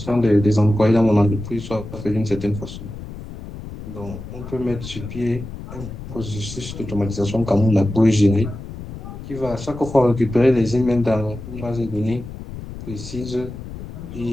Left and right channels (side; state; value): left; noise; rumble, 11 dB below the sound